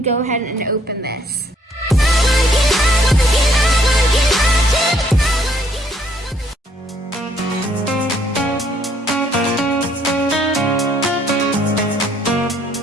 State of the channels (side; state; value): both; normal; correlation 0.66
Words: go ahead and open this.